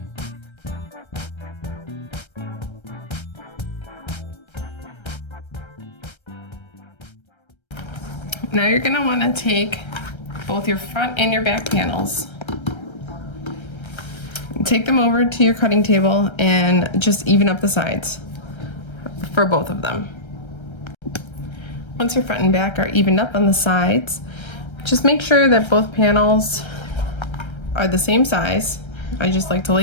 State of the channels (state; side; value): late; right; 1.3 ms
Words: Now you're gonna wanna take both your front and your back panels. Take them over to your cutting table and just even up the sides for both of them. Once your front and back are evened up on the sides, just make sure that both panels are the same size. I just like to